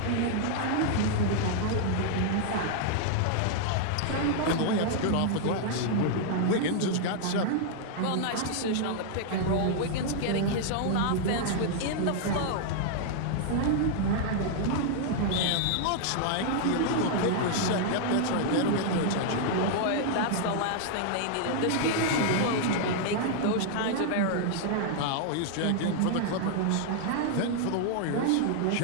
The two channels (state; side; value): different; both; correlation -0.01